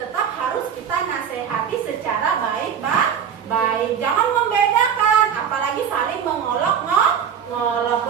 harus kita nasehati secara baik. Jangan membedakan, apalagi saling mengolok-ngolok.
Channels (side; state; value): left; quieter; 8.0 dB